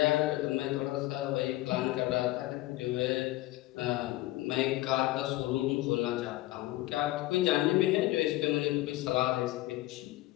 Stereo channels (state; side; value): quieter; right; 17.6 dB